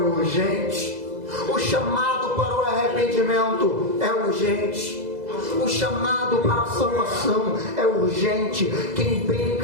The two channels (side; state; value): left; late; 2.0 ms